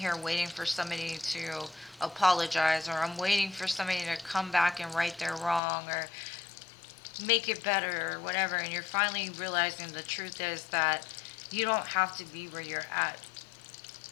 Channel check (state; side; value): drops out; right; at 5.6 s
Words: waiting for somebody to apologize, or I'm waiting for somebody to come back and right their wrong, or make it better, or whatever. And you're finally realizing the truth is that you don't have to be where you're at.